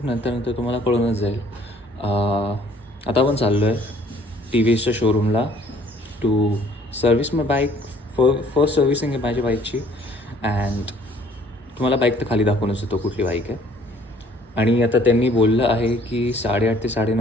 नंतर तुम्हाला कळूनच जाईल. आता आपण चाललो आहे टी व्ही एसच्या शोरूमला to service my bike. First servicing आहे माझ्या बाईकची. अँड तुम्हाला बाईक तर खाली दाखवूनच येतो कुठली बाईक आहे. आणि आता त्यांनी बोललं आहे की 8:30 ते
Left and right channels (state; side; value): normal; both; correlation 0.58